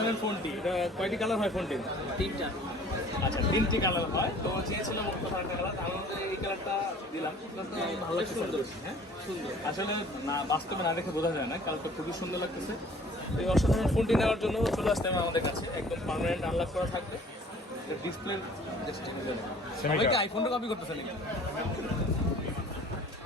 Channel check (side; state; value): both; normal; correlation 0.51